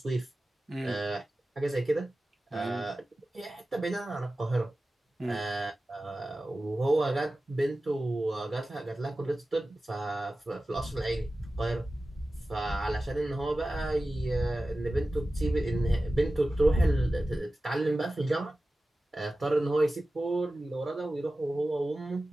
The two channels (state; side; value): normal; both; correlation 0.95